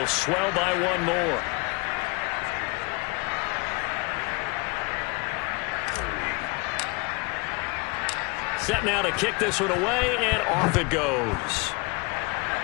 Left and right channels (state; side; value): quieter; right; 28.3 dB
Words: swell by one more. Set now to kick this one away, and off it goes.